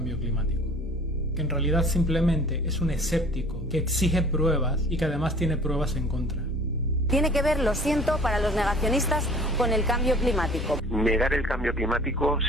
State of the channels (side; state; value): both; normal; correlation 0.48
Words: climático, que en realidad simplemente es un escéptico que exige pruebas y que además tiene pruebas en contra. Tiene que ver, lo siento, para los negacionistas con el cambio climático. Negar el cambio climático